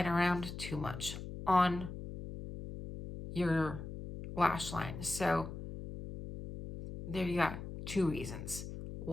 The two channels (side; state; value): left; noise; hum, 9 dB below the sound